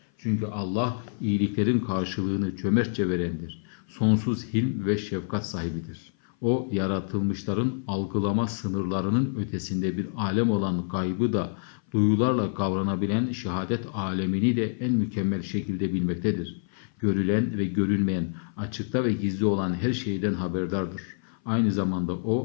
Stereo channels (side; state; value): right; silent; 57 dB below the other